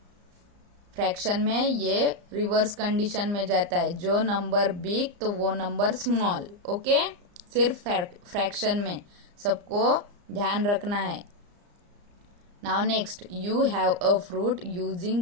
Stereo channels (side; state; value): left; late; 34 ms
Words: फ्रैक्शन में ये रिवर्स कंडीशन में जाता है, जो नंबर बिग तो वो नंबर स्मॉल. ओके, सिर्फ फ्रैक्शन में सबको ध्यान रखना है. Now next you have a fruit.